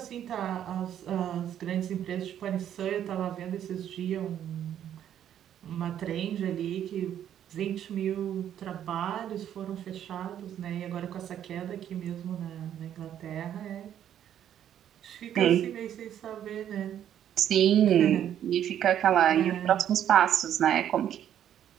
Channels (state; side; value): quieter; left; 10.3 dB